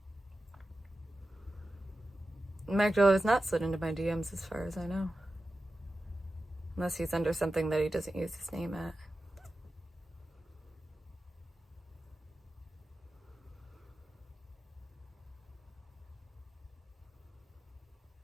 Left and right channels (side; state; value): both; normal; correlation 0.93